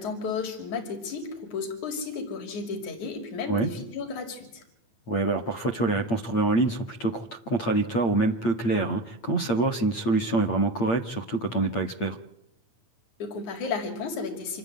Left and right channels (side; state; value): right; late; 8.7 ms